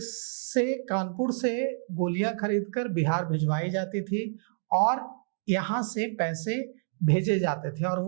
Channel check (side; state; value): left; silent; digital silence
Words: से, कानपुर से गोलियां खरीदकर बिहार भिजवाई जाती थी और यहाँ से पैसे भेजे जाते थे। और